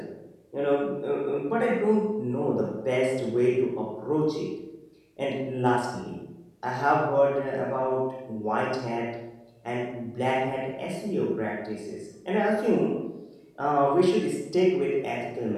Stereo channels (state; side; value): identical; both; correlation 1.00